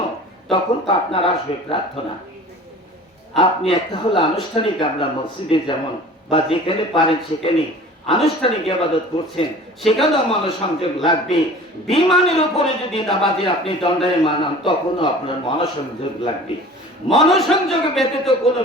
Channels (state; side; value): normal; both; correlation 0.43